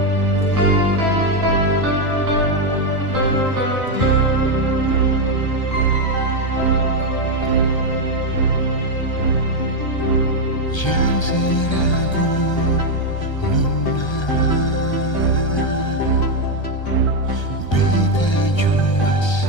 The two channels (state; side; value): late; right; 1.3 ms